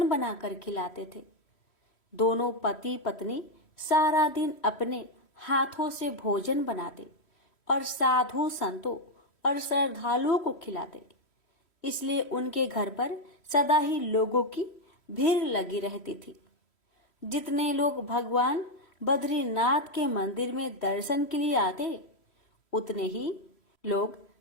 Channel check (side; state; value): right; late; 3.1 ms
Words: बनाकर खिलाते थे। दोनों पति पत्नी सारा दिन अपने हाथों से भोजन बनाते और साधु संतों और श्रद्धालुओं को खिलाते। इसलिए उनके घर पर सदा ही लोगों की भीड़ लगी रहती थी। जितने लोग भगवान बद्रीनाथ के मंदिर में दर्शन के लिए आते, उतने ही लोग